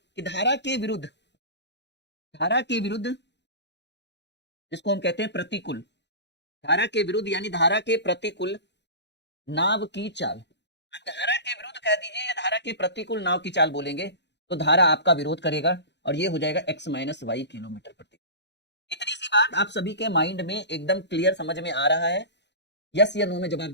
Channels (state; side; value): late; right; 0.50 ms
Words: धारा के विरुद्ध जिसको हम कहते हैं प्रतिकूल, धारा के विरुद्ध यानी धारा के प्रतिकूल नाव की चाल, धारा के विरुद्ध कह दीजिए या धारा के प्रतिकूल नाव की चाल बोलेंगे, तो धारा आपका विरोध करेगा और ये हो जाएगा x - y किलोमीटर प्रति। इतनी सी बात आप सभी के माइंड में एकदम क्लियर समझ में आ रहा है? यस या नो में जवाब